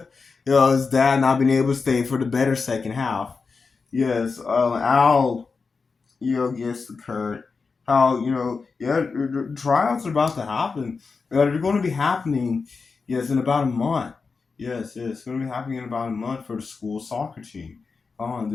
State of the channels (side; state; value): right; quieter; 4.7 dB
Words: his dad not being able to stay for the better second half. Yes, Al gets to Kurt how the tryouts are about to happen. They're going to be happening, yes, in about a month. Yes, it's going to be happening in about a month for the school soccer team.